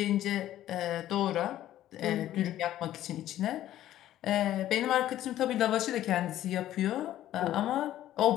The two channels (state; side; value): quieter; right; 13.0 dB